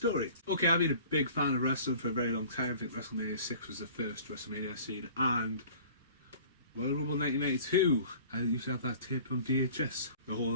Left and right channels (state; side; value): inverted; both; correlation -0.46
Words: Okay, I've been a big fan of wrestling for a very long time. I think WrestleMania 6 was the first WrestleMania I've seen. And Royal Rumble 1992. I used to have that tape on VHS. The whole